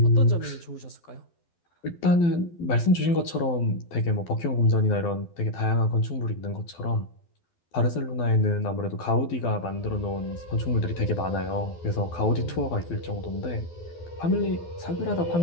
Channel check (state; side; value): late; right; 12 ms